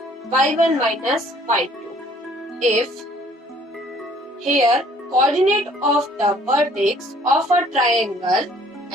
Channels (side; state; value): both; normal; correlation 0.58